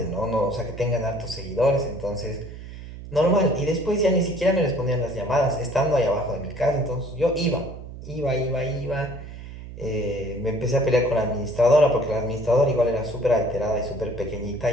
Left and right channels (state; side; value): noise; right; hum, 13 dB below the sound